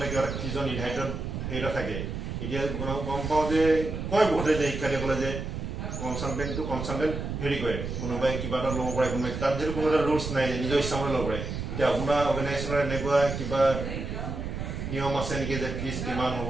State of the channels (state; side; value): noise; right; rumble, 5 dB below the sound